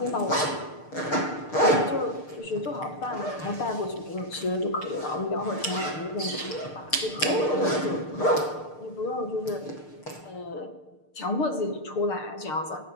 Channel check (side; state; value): right; late; 6.6 ms